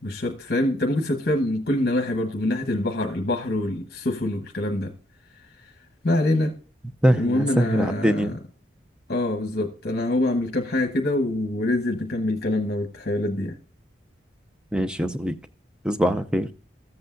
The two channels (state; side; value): normal; both; correlation 0.74